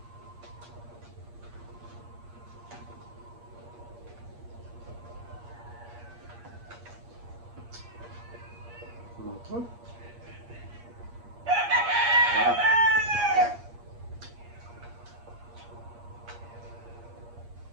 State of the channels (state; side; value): late; left; 8.5 ms